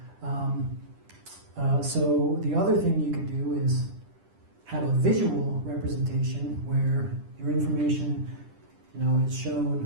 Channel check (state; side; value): late; left; 10 ms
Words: So the other thing you could do is have a visual representation where your information, is